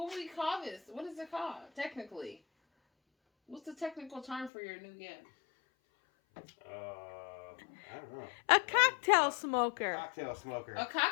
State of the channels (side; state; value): right; drops out; at 4.5 s